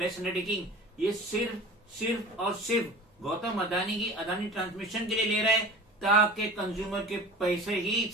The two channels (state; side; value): normal; both; correlation 0.38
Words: अंडरटेकिंग, ये सिर्फ और सिर्फ गौतम अदानी की अदानी ट्रांसमिशन के लिए ले रहा है, ताकि कंज्यूमर के पैसे ही